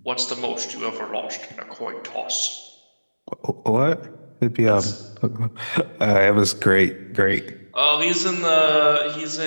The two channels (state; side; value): inverted; both; correlation -1.00